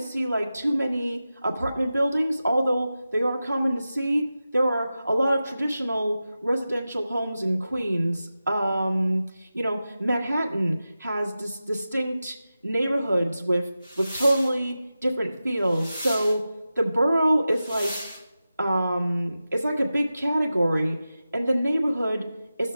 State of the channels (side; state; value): both; inverted; correlation -0.93